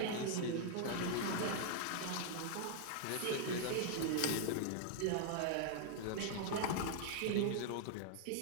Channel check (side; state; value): both; different; correlation 0.00